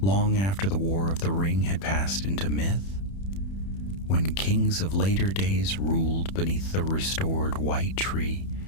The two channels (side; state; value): right; late; 31 ms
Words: after the War of the Ring had passed into myth. When kings of later days ruled beneath the restored white tree,